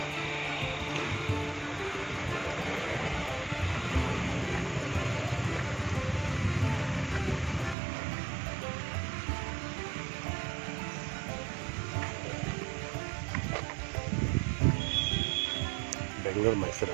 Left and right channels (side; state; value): left; drops out; at 7.8 s